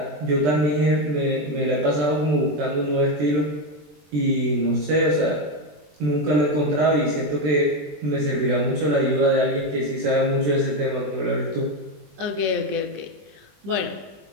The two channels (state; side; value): late; left; 20 ms